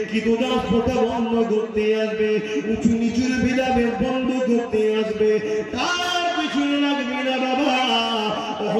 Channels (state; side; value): identical; both; correlation 1.00